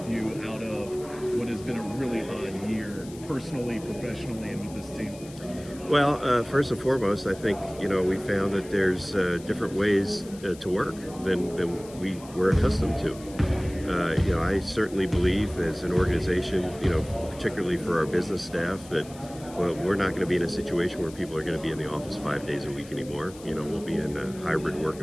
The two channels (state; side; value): noise; left; hiss, 20 dB below the sound